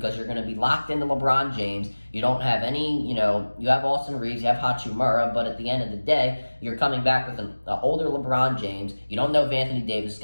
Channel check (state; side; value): inverted; both; correlation -1.00